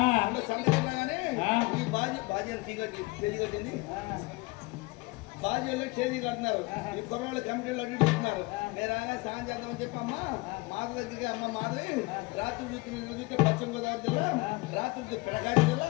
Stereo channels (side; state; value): right; quieter; 24.2 dB